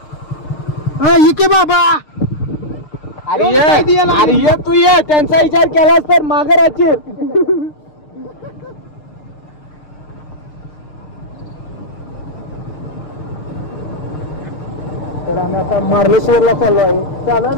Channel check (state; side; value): late; right; 6.6 ms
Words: इके बाबा, अरे तू ये, त्यांचा विचार केलास तर मागे राहशील. तर आम्ही आता मार्लेश्वरला चाललो आहे. चालू आहे